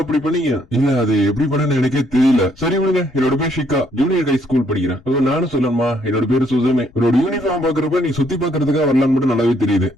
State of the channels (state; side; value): noise; left; rumble, 28 dB below the sound